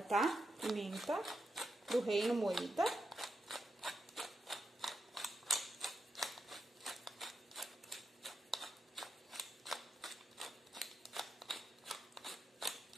tá? Pimenta do reino moída.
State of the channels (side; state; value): both; normal; correlation 0.86